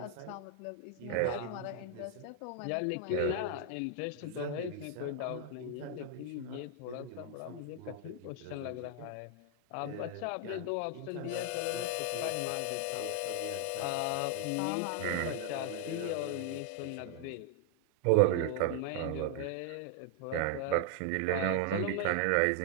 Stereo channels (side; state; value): both; different; correlation 0.00